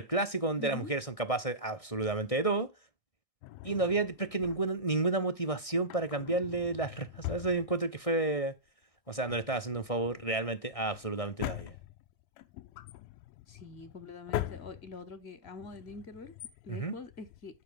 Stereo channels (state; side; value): late; right; 1.6 ms